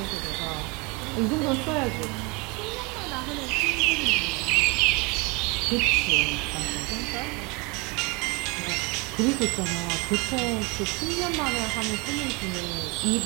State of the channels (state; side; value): quieter; left; 28.4 dB